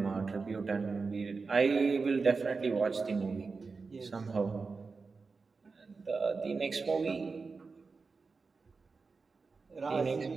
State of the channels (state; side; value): quieter; left; 4.5 dB